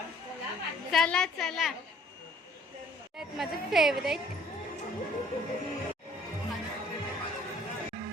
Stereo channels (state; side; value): normal; both; correlation 0.57